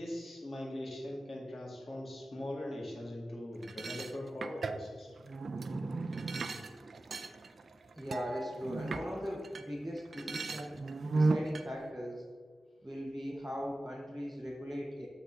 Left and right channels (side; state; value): both; normal; correlation 0.95